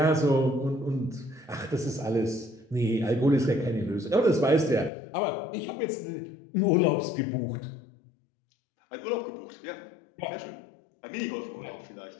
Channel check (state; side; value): drops out; right; at 4.9 s